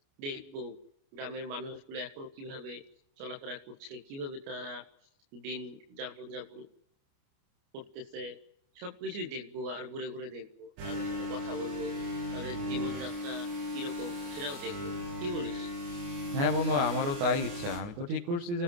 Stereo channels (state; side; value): late; left; 29 ms